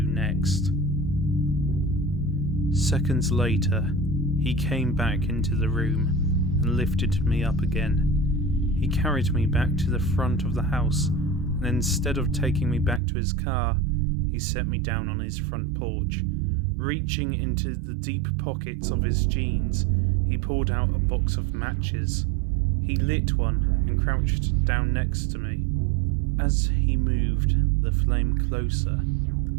next. Seconds later, he came back into the room and lifted me up again. He carried me back to the front of the house, and instead of taking me back to his car, he set me down on his front porch. Reaching into the deep pockets of his jeans, he pulled out a box of matches. He lit one and crouched down next to me. As he moved the flame closer,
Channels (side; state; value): left; drops out; at 13.0 s